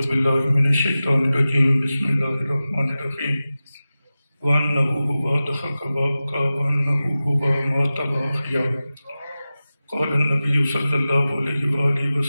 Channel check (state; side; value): inverted; both; correlation -0.95